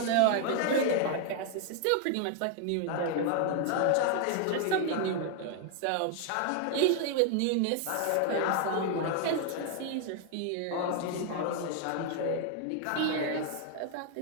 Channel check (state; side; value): different; both; correlation 0.00